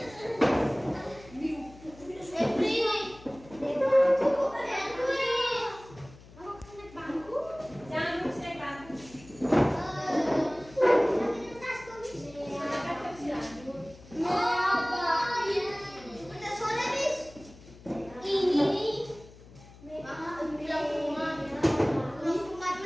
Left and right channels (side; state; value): left; noise; hum, 21 dB below the sound